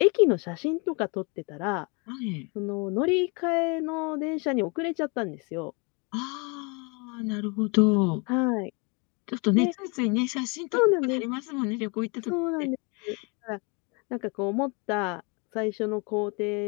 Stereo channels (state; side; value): quieter; right; 31.8 dB